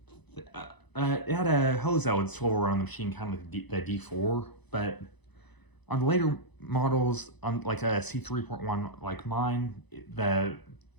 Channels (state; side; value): late; right; 1.0 ms